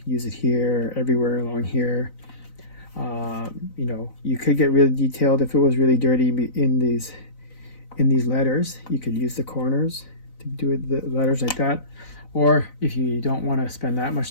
use it here, everywhere along here. You know, you could get really detailed if it was really dirty in these letters. You could use the corners to do it, the letters like that. Or if you don't want to spend that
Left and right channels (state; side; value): late; right; 4.0 ms